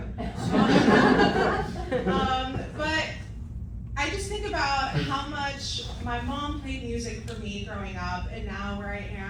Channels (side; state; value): both; identical; correlation 1.00